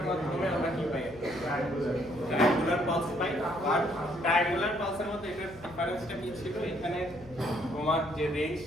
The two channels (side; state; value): left; noise; hum, 20 dB below the sound